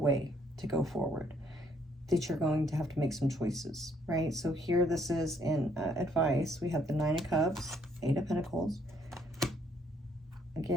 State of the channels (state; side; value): normal; both; correlation 0.68